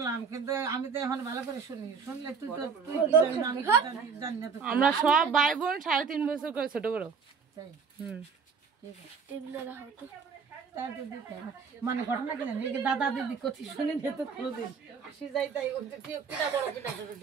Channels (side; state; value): left; quieter; 5.8 dB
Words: কিন্তু আমি তো এখন ভালো করে শুনি শুনলে তুই তো তুই কি জানিস না, আমি কি জানি না তো আমরা সব ভাই বোন 3.5 বছর করে ছোট বড় তাই হুম ঠিক আছে এগুলো রাখো তো তার তো দিতে হবে। মানে ঘটনা কি জানি এই দাদা দিদি কথা শুনে নিত কোনোদিন আসি যাই তাই কিনা বড় কিনা